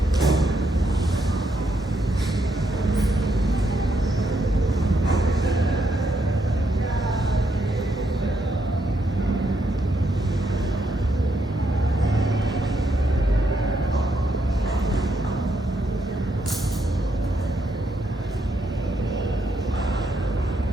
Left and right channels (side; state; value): both; normal; correlation 0.77